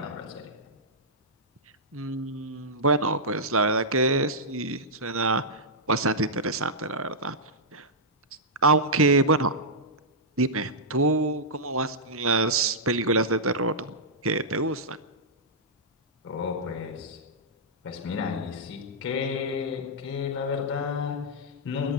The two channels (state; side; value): normal; both; correlation -0.11